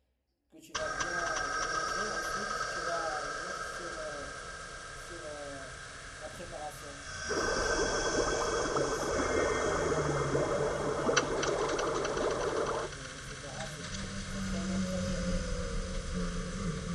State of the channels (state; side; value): identical; both; correlation 1.00